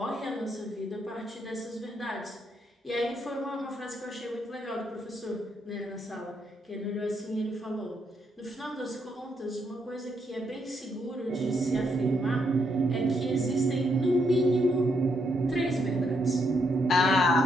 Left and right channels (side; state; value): both; normal; correlation 0.77